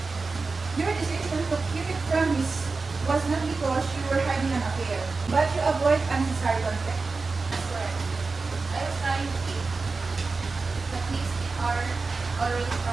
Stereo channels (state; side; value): quieter; left; 4.1 dB